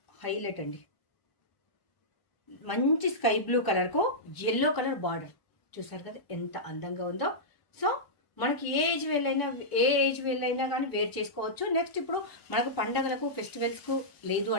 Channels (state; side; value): late; right; 1.0 ms